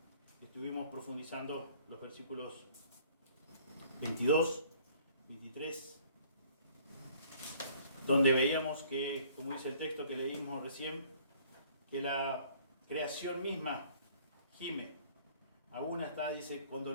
estuvimos profundizando los versículos 22, 23, donde veíamos que, como dice el texto que leímos recién, que la creación misma gime, aún está, dice, con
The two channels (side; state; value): both; inverted; correlation -0.56